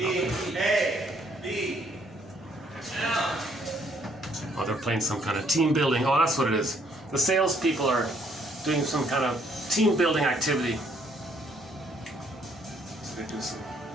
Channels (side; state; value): both; normal; correlation 0.67